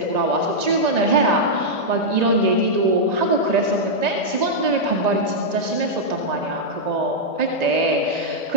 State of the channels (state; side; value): late; left; 1.9 ms